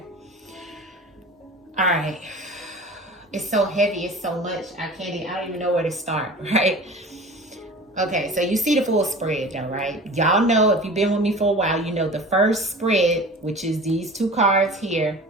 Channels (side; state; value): both; normal; correlation 0.39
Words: All right. It's so heavy. It's so much. I don't even know where to start. Right. Okay, so you see the full spread though, right? Y'all know, if you've been with me for a while, you know the first spread, which is these two cards here,